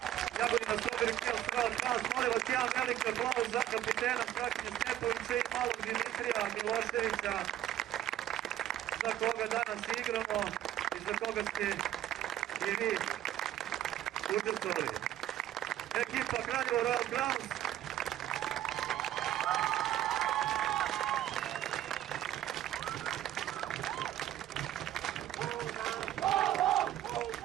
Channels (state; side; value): quieter; left; 12.3 dB